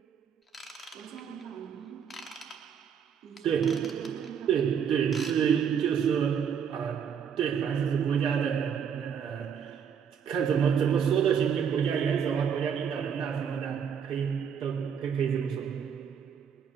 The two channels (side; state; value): left; quieter; 7.6 dB